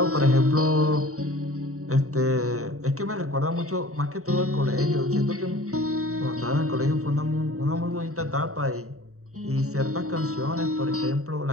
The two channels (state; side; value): late; left; 0.64 ms